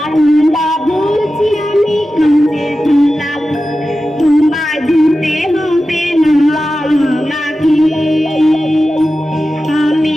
বলছি আমি কাজের থালা, তোমায় ধুতে হবে না নাকি? আমি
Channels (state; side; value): normal; both; correlation 0.93